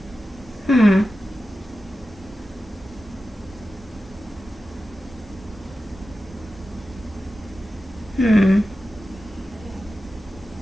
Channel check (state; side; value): normal; both; correlation 0.93